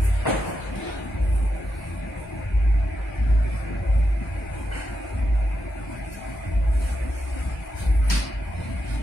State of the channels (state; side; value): normal; both; correlation 0.86